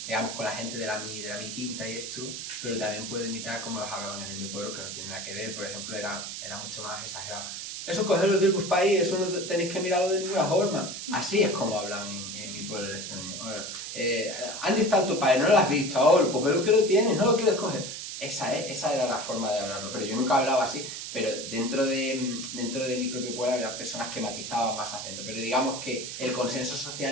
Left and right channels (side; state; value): right; noise; hiss, 7 dB below the sound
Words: digamos, con la gente de mi quinta y esto, pero también puedo imitar como los hablaban en mi pueblo, que no tiene nada que ver, por ejemplo, era mucho más exagerado. Eso cogerlo del bus país, eso no tenéis que mirarlo de ninguna forma. Así es como hablan en mi pueblo el extremeño. ¿Dónde está tu padre? ¿No lo has visto? Oh, pues pero que lo tienes, no lo quieres coger. Esa era la forma de hablarlo, pero yo nunca hablaba así. Pero dentro de mi propio pueblo había personas que matizaban más acento. Pero digamos que el consenso